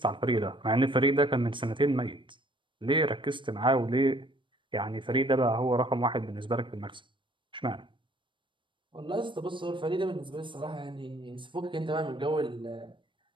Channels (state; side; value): late; left; 0.24 ms